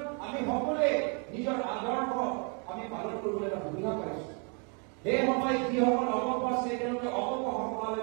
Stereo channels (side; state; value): left; quieter; 36.9 dB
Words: আমি সকলোৱে নিজৰ আদৰ্শ আমি পালন কৰিবলৈ এটা সুবিধা পাইছো সেই সময়ত যিসকল অপক্ষ আছে তেওঁলোকে অপক্ষ সভালৈ